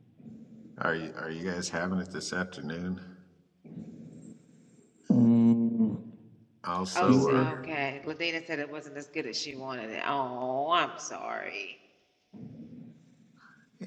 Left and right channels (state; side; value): identical; both; correlation 1.00